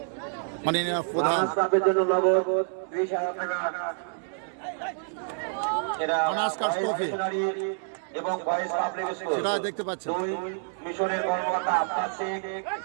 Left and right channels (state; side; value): silent; left; 59 dB below the other